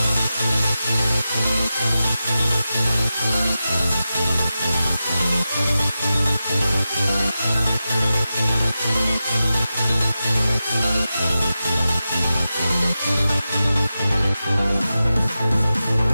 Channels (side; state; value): both; inverted; correlation -0.92